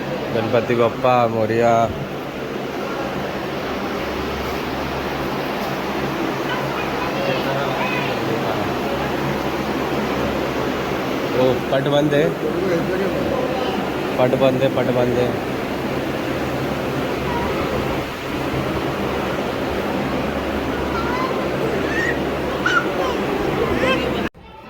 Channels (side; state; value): both; identical; correlation 1.00